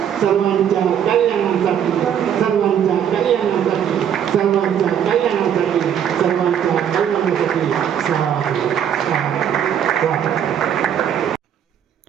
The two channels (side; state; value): left; quieter; 9.1 dB